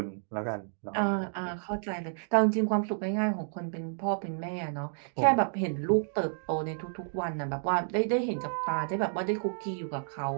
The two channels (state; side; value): silent; left; digital silence